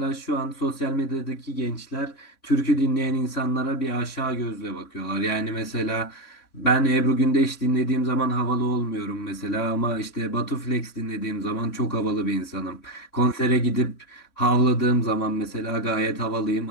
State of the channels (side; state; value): right; late; 3.6 ms